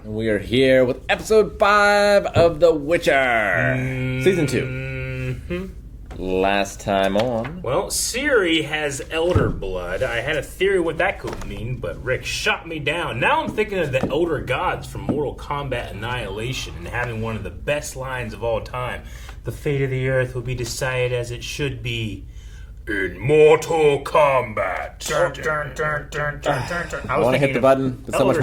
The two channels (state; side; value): identical; both; correlation 1.00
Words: And we are here with episode 5 of The Witcher. Season 2. Mm-hmm. Last time on. Well, Ciri has elder blood. I had a theory what that could mean, but Rick shot me down. Now I'm thinking of the elder gods from Mortal Kombat Annihilation and having one of the best lines of all time. The fate of the earth will be decided as it should be in Mortal Kombat. Dun, dun, dun, dun, dun, dun, dun. I want to hit the button, but so much